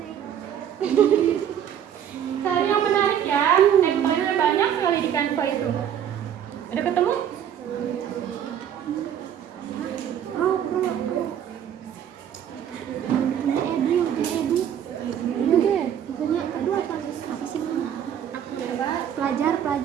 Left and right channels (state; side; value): quieter; left; 9.5 dB